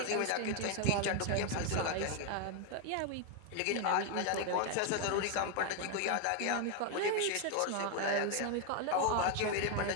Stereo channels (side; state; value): both; different; correlation 0.01